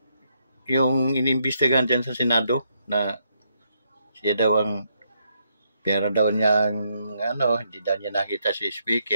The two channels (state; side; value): inverted; both; correlation -0.77